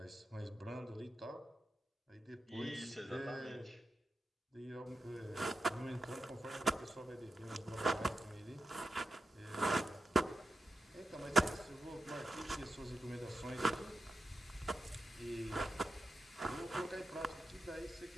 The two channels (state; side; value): normal; both; correlation 0.90